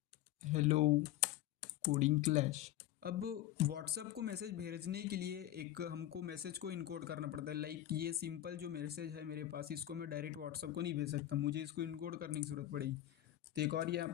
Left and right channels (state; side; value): quieter; right; 13.5 dB